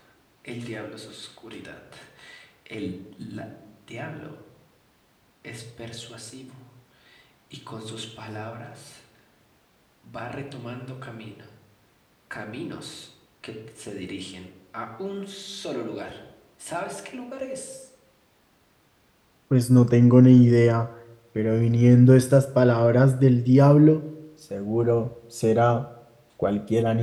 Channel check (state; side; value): identical; both; correlation 1.00